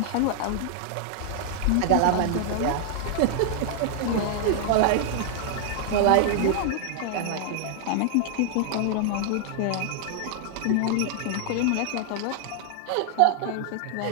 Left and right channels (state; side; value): different; both; correlation -0.01